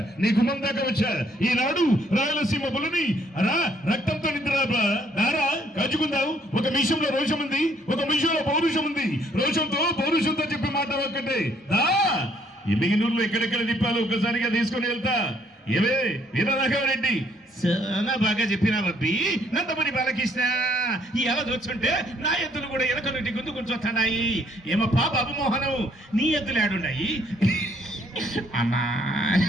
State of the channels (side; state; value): both; normal; correlation 0.66